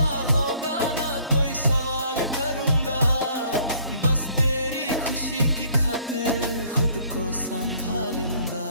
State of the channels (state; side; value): inverted; both; correlation -0.59